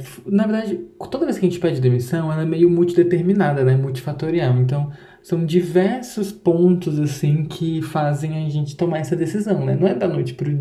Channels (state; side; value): identical; both; correlation 1.00